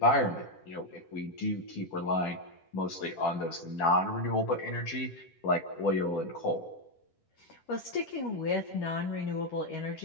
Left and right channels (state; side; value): late; right; 10 ms